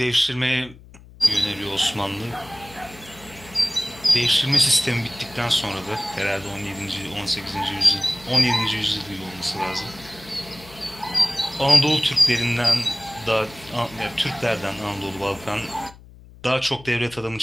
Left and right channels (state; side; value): noise; left; hum, 21 dB below the sound